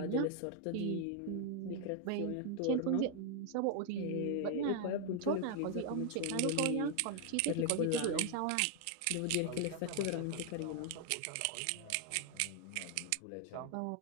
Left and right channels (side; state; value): both; different; correlation 0.00